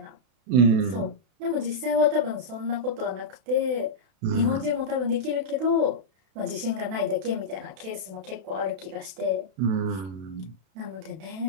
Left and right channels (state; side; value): late; left; 32 ms